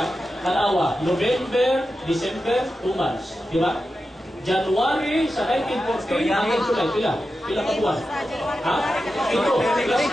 Kalawa, November, December, 2 months. Di ba? January sa 1914, hanggang July, pila ka buwan? Ha? Ito, plus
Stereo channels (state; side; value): normal; both; correlation 0.91